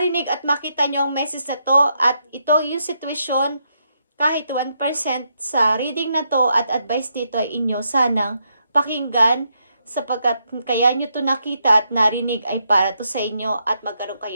at makita nyo ang message na to at ito yung sitwasyon, kahit 1% sa reading na to at advice dito ay inyo sanang pakinggan, sapagkat kaya nyo to nakita at narinig ay para to sa inyo at magkaroon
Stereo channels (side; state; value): both; inverted; correlation -0.79